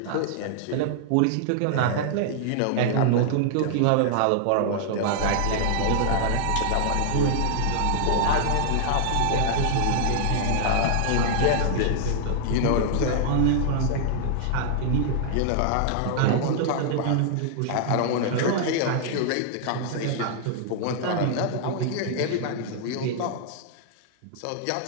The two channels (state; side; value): different; both; correlation -0.01